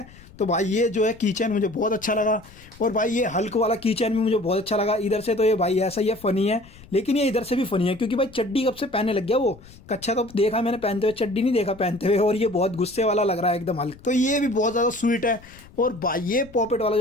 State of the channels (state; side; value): noise; left; rumble, 22 dB below the sound